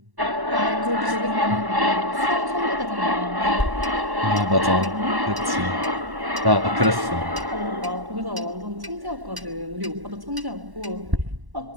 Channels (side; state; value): left; late; 1.1 ms